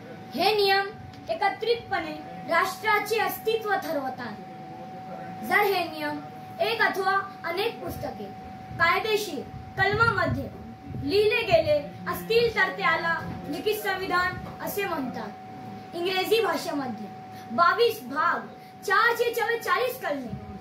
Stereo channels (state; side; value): identical; both; correlation 1.00